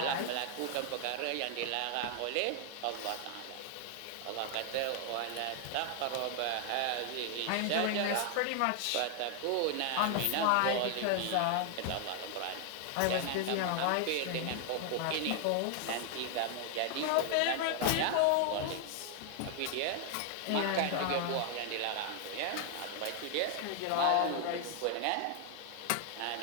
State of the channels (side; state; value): both; different; correlation 0.00